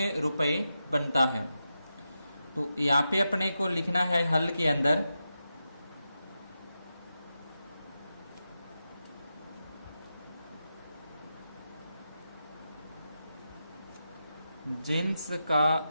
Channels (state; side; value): inverted; both; correlation -0.88